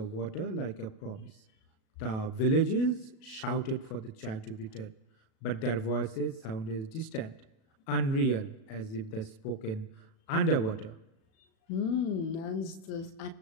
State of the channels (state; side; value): late; right; 37 ms